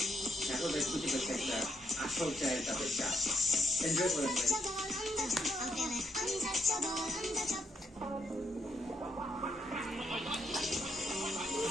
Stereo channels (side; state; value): both; normal; correlation 0.76